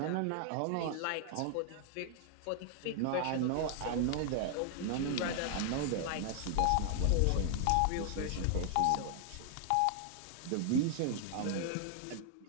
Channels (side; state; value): both; different; correlation 0.00